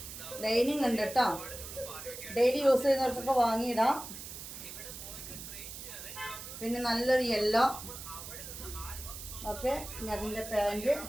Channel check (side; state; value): right; noise; hiss, 11 dB below the sound